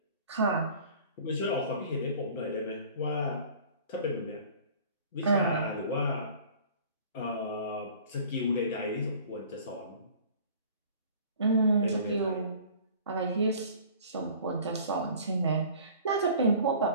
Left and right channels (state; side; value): inverted; both; correlation -0.47